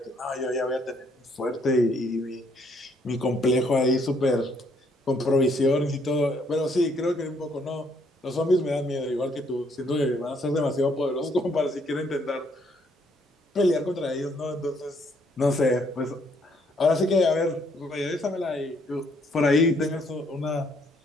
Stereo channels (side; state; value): both; normal; correlation 0.68